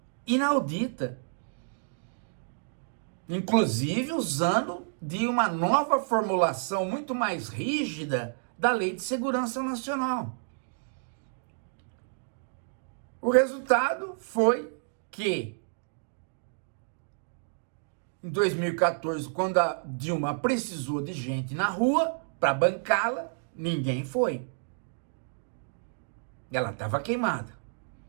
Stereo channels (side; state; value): left; silent; digital silence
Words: inaudita, inclusive usando de uma nova formulação muito mais rígida da Lei de Segurança Nacional. O resultado foi que, em 2014, quando a Dilma precisou de gente na rua para bancá-la, ninguém foi. Ela estava queimada.